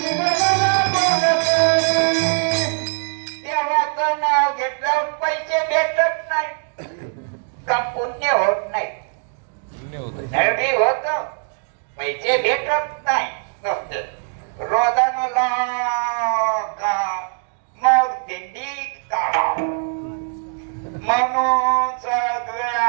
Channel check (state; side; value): silent; left; 56 dB below the other